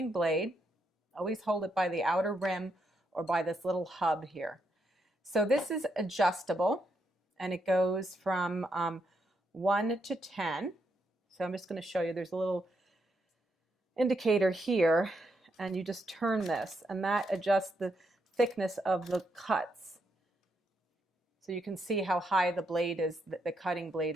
blade. Always hold it by the outer rim or by this little hub here. So this is adjustable, and it goes from 1 to 10. So I'm just going to show you. There's a little indicator here, and you just turn this, and that adjusts the thickness of the cuts. So you can see how high the blade is, the cutting blade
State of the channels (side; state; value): both; normal; correlation 0.79